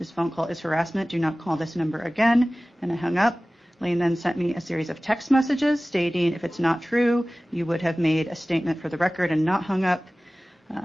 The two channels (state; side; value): normal; both; correlation 0.98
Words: phone call is harassment. Do not call this number again. And I hung up. Lane then sent me a series of text messages stating if it's not true, you would have made a statement for the record and not hung up,